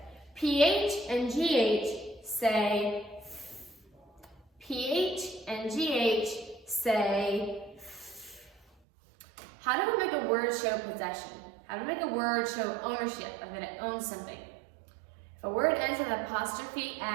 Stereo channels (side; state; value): left; drops out; at 8.7 s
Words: PH and GH say, PH and GH say. How do we make a word show possession? How do we make a word show ownership, or that it owns something? If a word ends with apostrophe